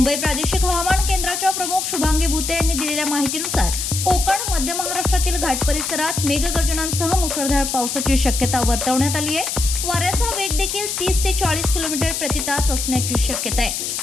प्रादेशिक हवामान केंद्राच्या प्रमुख शुभांगी भुते यांनी दिलेल्या माहितीनुसार कोकण, मध्य महाराष्ट्रातील घाट परिसरात मेघगर्जनांसह मुसळधार पावसाची शक्यता वर्तवण्यात आली आहे। वाऱ्याचा वेग देखील 30 ते 40 किलोमीटर प्रति तास असण्याची शक्यता आहे।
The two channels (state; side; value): noise; left; hiss, 3 dB below the sound